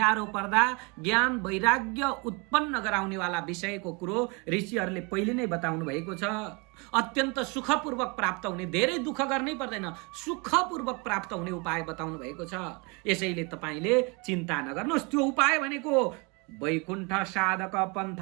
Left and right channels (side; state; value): left; quieter; 30.0 dB